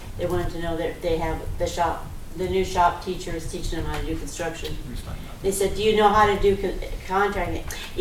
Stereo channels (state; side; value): identical; both; correlation 1.00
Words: They wanted to know that they have the new shop teachers teaching them how to do construction. They said, do you know how to do contracting?